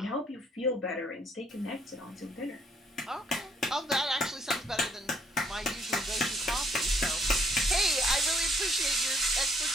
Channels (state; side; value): normal; both; correlation 0.67